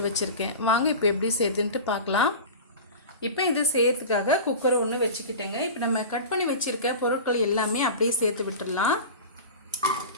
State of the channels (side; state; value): both; inverted; correlation -0.32